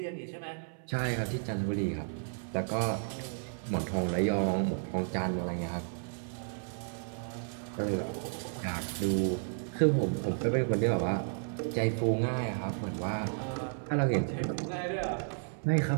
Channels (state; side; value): silent; left; 56 dB below the other